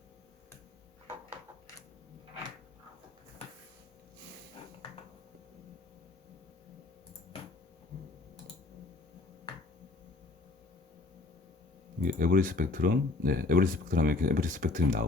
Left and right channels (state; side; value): quieter; right; 3.4 dB